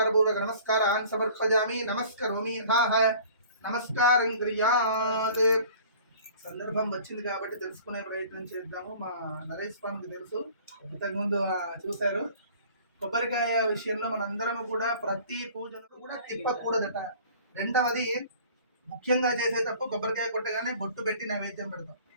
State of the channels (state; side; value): inverted; both; correlation -0.48